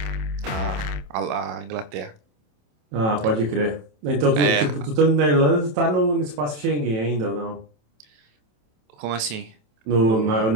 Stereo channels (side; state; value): left; late; 27 ms